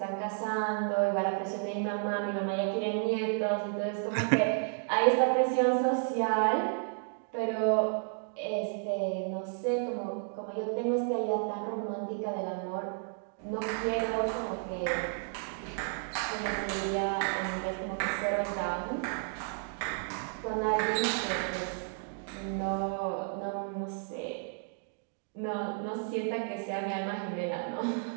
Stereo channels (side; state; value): left; silent; 56 dB below the other